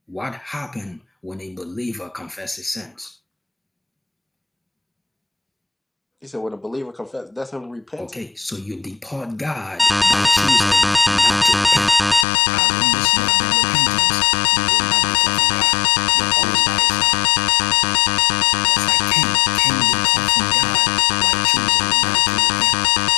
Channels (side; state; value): right; drops out; at 12.2 s